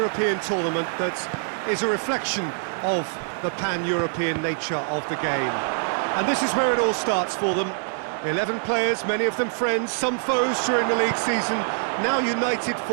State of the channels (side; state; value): left; silent; 60 dB below the other